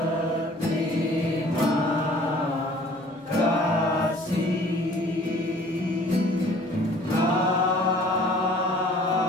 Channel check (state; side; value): normal; both; correlation 0.52